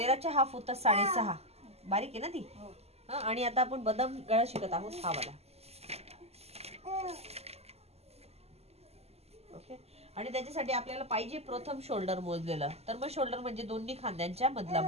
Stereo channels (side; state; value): left; late; 0.30 ms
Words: हाफ होतात 6.5. बारीक आहे ना ती. आणि आता आपण बदाम गळा शिकत आहोत हा वाला. ओके. आणि त्याच्यासाठी आपल्याला पाहिजे प्रथम शोल्डर मोजलेलं. तर मग शोल्डर म्हणजे दोन्ही खांद्यांच्या मधला